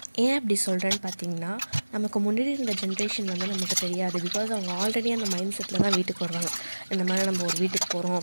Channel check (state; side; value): inverted; both; correlation -1.00